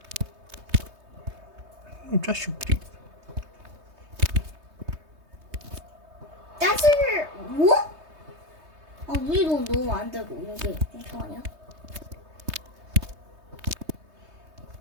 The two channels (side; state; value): left; late; 3.2 ms